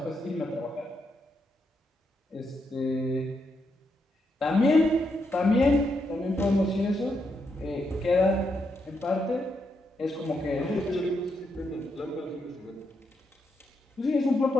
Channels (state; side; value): normal; both; correlation 0.81